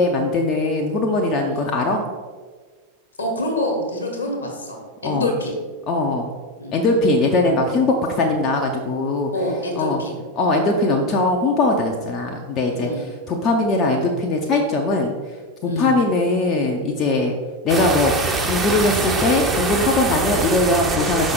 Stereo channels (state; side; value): normal; both; correlation 0.16